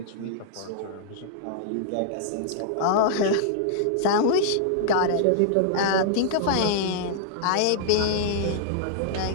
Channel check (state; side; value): different; both; correlation -0.01